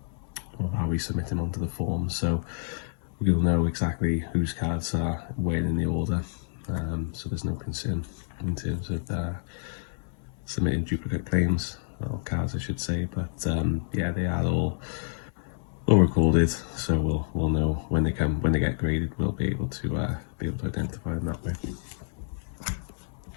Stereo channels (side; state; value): right; silent; 59 dB below the other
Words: how we submit them onto the form, so you'll know exactly whose cards are where in the order, so there's no concern in terms of submitting duplicate claims, or cards I should say, but yeah, they are all recorded, so we'll know when they get graded. We'll be able to identify them that way.